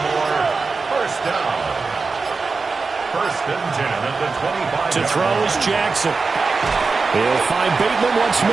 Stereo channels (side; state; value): left; quieter; 4.4 dB